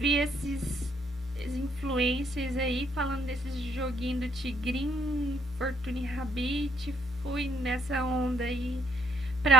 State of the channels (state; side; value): normal; both; correlation 0.69